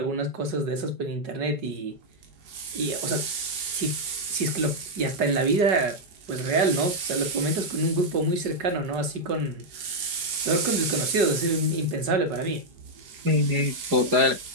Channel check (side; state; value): left; late; 4.9 ms